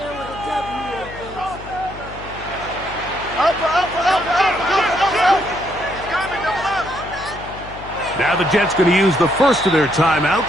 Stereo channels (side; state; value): left; noise; hum, 15 dB below the sound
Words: with a W. Up. Now the Jets going to use the first of their